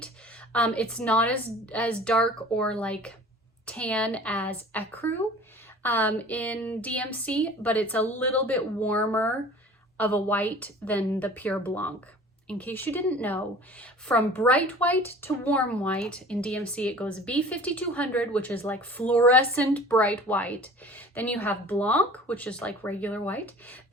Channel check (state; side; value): normal; both; correlation 0.44